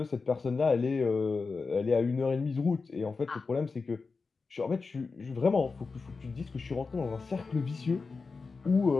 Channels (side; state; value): right; quieter; 4.4 dB